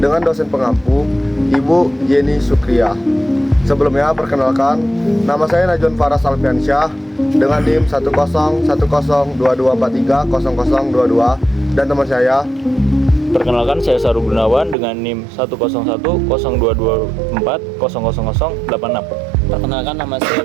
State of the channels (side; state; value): left; drops out; at 14.8 s